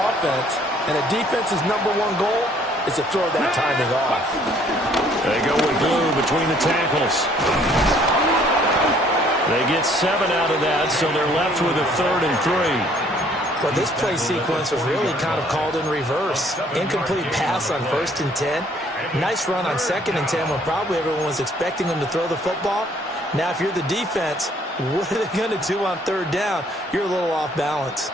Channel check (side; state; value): both; normal; correlation 0.61